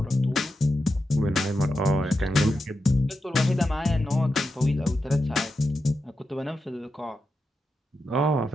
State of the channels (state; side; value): normal; both; correlation 0.88